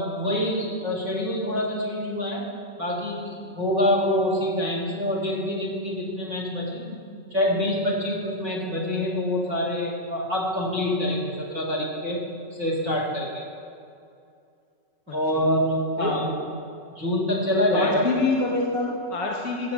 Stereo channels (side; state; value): left; late; 5.4 ms